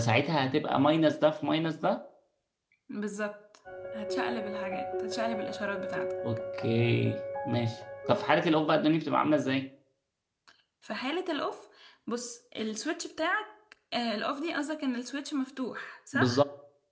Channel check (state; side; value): identical; both; correlation 1.00